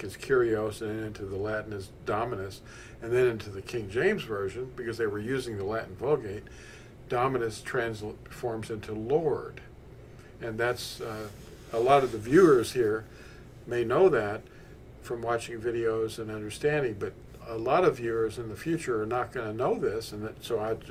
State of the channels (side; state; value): both; identical; correlation 1.00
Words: as Kyrios and into the Latin as Dominus, and then into the King James Version, because they were using the Latin Vulgate, Dominus transforms into Lord. And that's, a lot of the viewers here may know that from watching videos and understanding, but a lot of viewers in the future are not going to know this, and so I